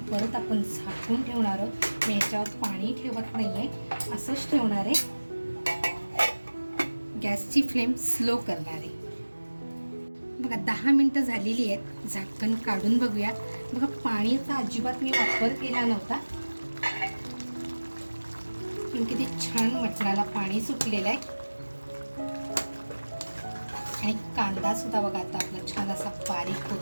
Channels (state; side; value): inverted; both; correlation -1.00